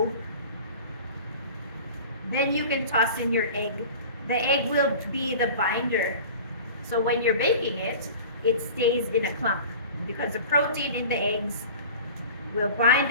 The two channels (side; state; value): both; inverted; correlation -0.39